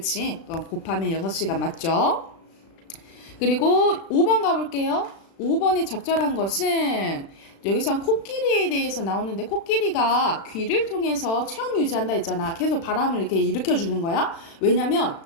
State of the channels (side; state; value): right; late; 36 ms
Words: 곱하면 6시간 맞죠? 그리고 5번 가볼게요. 5번에 적절한 것은 여기선 코끼리에 대해서 나오는데 코끼리가 귀를 통해서 체온 유지한다 했잖아. 계속 바람을 이렇게 일으켜주는 거야. 왜냐면